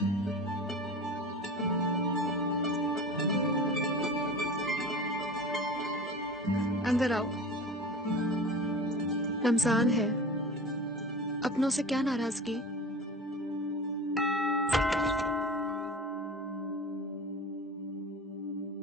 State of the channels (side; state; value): both; normal; correlation 0.35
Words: अंदर आओ। रमजान है, अपनों से क्या नाराजगी?